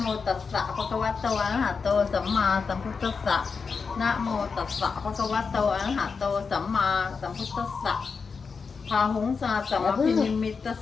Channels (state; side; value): quieter; right; 5.2 dB